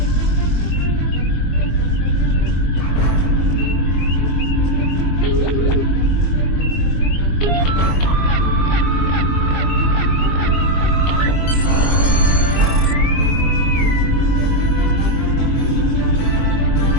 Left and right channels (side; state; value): right; late; 22 ms